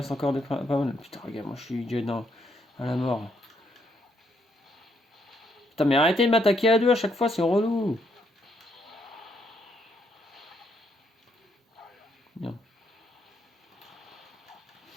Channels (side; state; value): both; normal; correlation 0.74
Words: encore pas mal. Putain, regarde, moi je suis déjà à la mort. Putain, mais arrêtez de m'attaquer à deux à chaque fois, c'est relou. Bien.